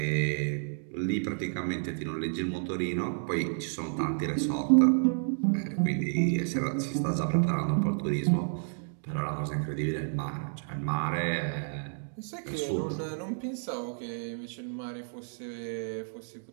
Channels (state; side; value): silent; left; digital silence